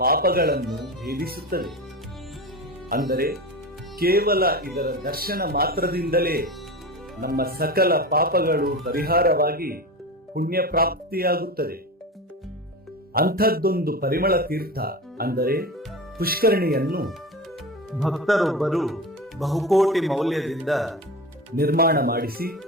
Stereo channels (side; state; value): both; normal; correlation 0.27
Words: ಪಾಪಗಳನ್ನು ಭೇದಿಸುತ್ತದೆ. ಅಂದರೆ ಕೇವಲ ಇದರ ದರ್ಶನ ಮಾತ್ರದಿಂದಲೇ ನಮ್ಮ ಸಕಲ ಪಾಪಗಳು ಪರಿಹಾರವಾಗಿ ಪುಣ್ಯ ಪ್ರಾಪ್ತಿಯಾಗುತ್ತದೆ. ಅಂಥದ್ದೊಂದು ಪರಿಮಳ ತೀರ್ಥ ಅಂದರೆ ಪುಷ್ಕರಣಿಯನ್ನು ಭಕ್ತರೊಬ್ಬರು ಬಹುಕೋಟಿ ಮೌಲ್ಯದಿಂದ ನಿರ್ಮಾಣ ಮಾಡಿಸಿ